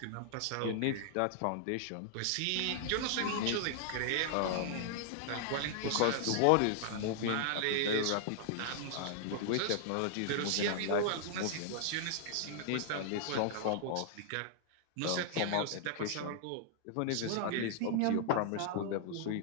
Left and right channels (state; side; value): different; both; correlation -0.01